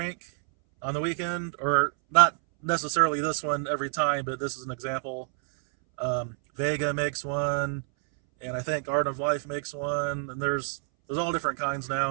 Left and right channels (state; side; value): silent; left; 60 dB below the other